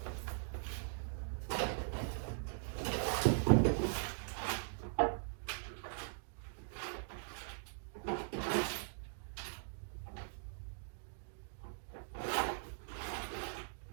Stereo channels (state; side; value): silent; left; digital silence